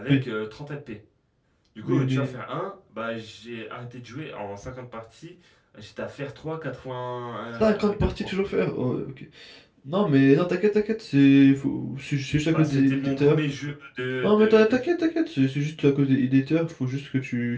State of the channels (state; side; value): identical; both; correlation 1.00